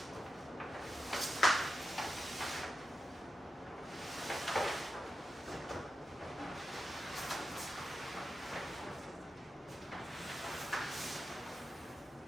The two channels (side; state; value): both; normal; correlation 0.89